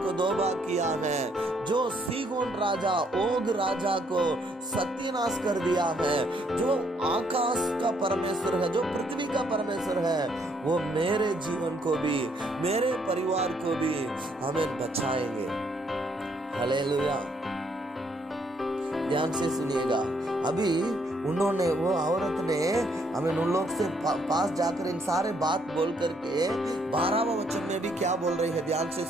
दो भाग किया है, जो सीगोन राजा, ओग राजा को सत्यानाश कर दिया है, जो आकाश का परमेश्वर है, जो पृथ्वी का परमेश्वर है, वो मेरे जीवन को भी, मेरे परिवार को भी हमें बचाएंगे। हालेलुया। ध्यान से सुनिएगा। अभी उन्होंने, वो औरत ने उन लोग से पास जाकर इन सारे बात बोल करके 12वां वचन में भी क्या बोल रही है, ध्यान से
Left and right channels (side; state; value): both; normal; correlation 0.70